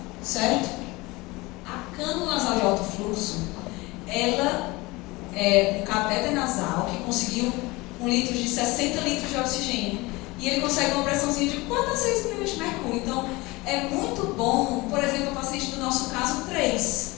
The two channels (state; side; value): quieter; right; 22.6 dB